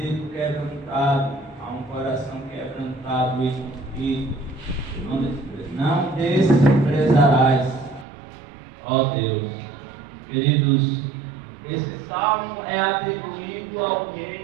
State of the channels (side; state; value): left; drops out; at 8.1 s